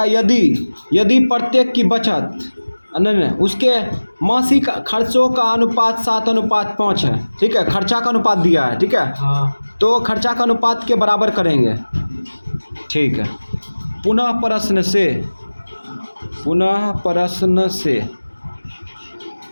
यदि प्रत्येक की बचत नहीं उसके मासिक खर्चों का अनुपात 7:5 है, ठीक है, खर्चा का अनुपात दिया है, ठीक है। तो खर्चा का अनुपात के बराबर करेंगे, ठीक है। पुनः प्रश्न से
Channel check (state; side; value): inverted; both; correlation -1.00